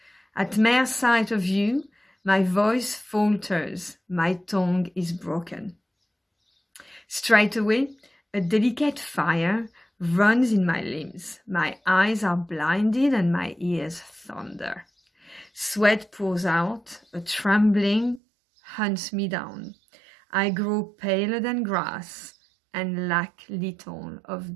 At mere sight of you, my voice falters, my tongue is broken. Straightway, a delicate fire runs in my limbs. My eyes are blinded and my ears thunder. Sweat pours out, a trembling hunts me down. I grow paler than grass and lack little of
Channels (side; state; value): left; drops out; at 18.2 s